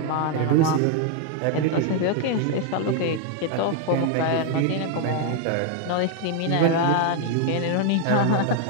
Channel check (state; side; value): different; both; correlation 0.00